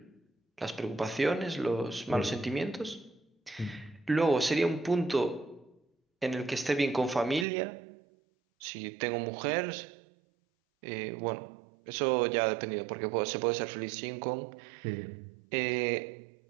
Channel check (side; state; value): left; drops out; at 7.5 s